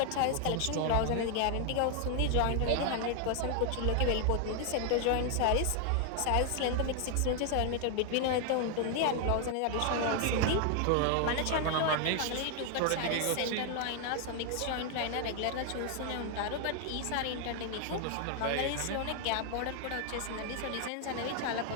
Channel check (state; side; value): different; both; correlation 0.00